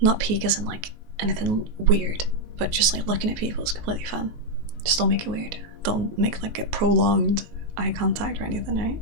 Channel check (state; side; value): late; left; 19 ms